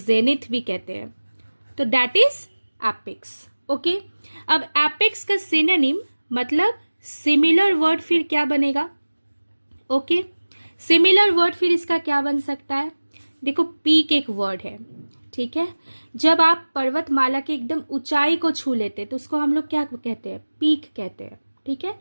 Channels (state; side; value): inverted; both; correlation -1.00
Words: भी कहते हैं। तो दैट इज एपेक्स। ओके, अब एपेक्स का सिनोनिम मतलब सिमिलर वर्ड फिर क्या बनेगा। ओके, सिमिलर वर्ड फिर इसका क्या बन सकता है। देखो, पीक एक वर्ड है, ठीक है। जब आप पर्वतमाला के एकदम ऊंचाई को छू लेते तो उसको हम लोग क्या कहते हैं, पीक कहते हैं, ठीक है।